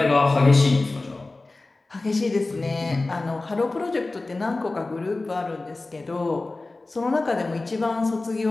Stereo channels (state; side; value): quieter; right; 3.2 dB